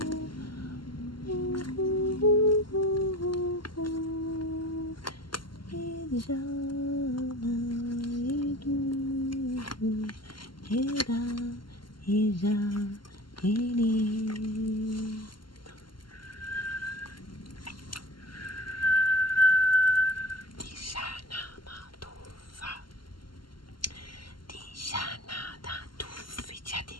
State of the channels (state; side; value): late; right; 0.72 ms